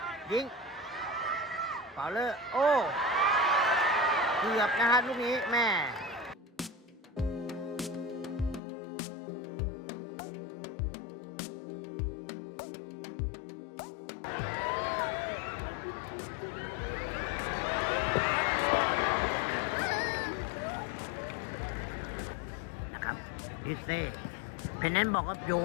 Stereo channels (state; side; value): drops out; right; at 8.6 s